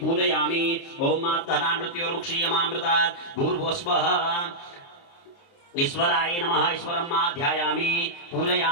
ओम मात्तनान्मृत्योर्मुक्षीयमामृतात् भूर्भस्वः ईश्वराय नमः। ईश्वरं मा ध्यायामि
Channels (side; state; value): right; late; 29 ms